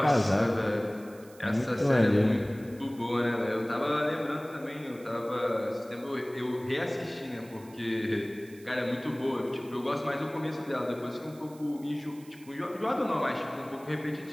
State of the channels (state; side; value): noise; right; hiss, 24 dB below the sound